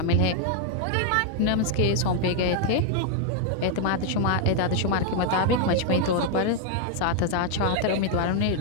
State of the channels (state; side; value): different; both; correlation 0.00